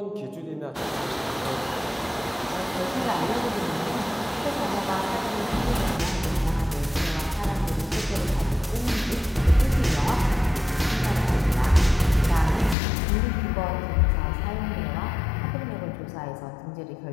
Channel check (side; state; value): right; drops out; at 12.8 s